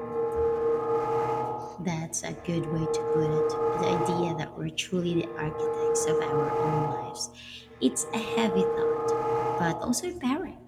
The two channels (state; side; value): identical; both; correlation 1.00